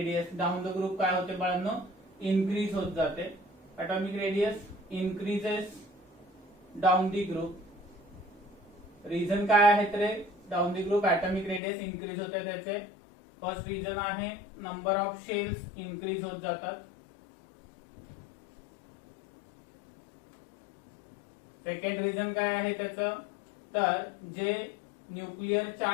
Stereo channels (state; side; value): drops out; right; at 11.6 s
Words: down the group काय होते बाळांनो, increase होत जाते. atomic radius increases down the group. Reason काय आहे तर down the group atomic radius increase होते त्याचे. फर्स्ट रिझन आहे नंबर ऑफ शेल्स इनक्रीज होत जातात. सेकंड रिझन काय आहे त्याचं, तर जे न्यूक्लिअर